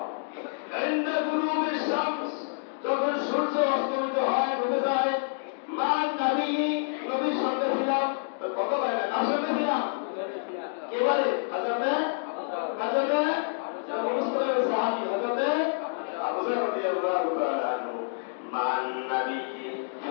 ইনদা গুরুবিশ শামস, যখন সূর্য অস্তমিত হয়, ডুবে যায়, মা নবী, নবীর সঙ্গে ছিলাম। তো কত ভাই না, কার সঙ্গে ছিলাম? এবারে হযরতে মুসলিমের সাহাবী হযরতে আবু যর রাদিয়াল্লাহু তাআলা আনহু। মান নবী,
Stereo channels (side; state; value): right; silent; digital silence